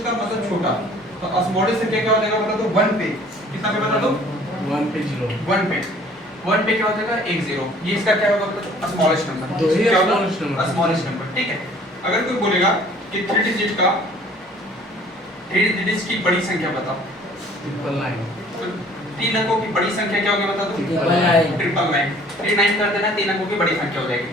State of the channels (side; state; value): both; normal; correlation 0.53